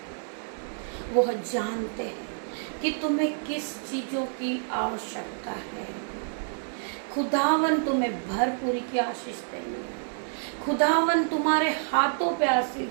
वह जानते हैं कि तुम्हें किस चीजों की आवश्यकता है। खुदावन तुम्हें भरपूरी की आशीष देंगे। खुदावन तुम्हारे हाथों पे आशीष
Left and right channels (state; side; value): silent; left; digital silence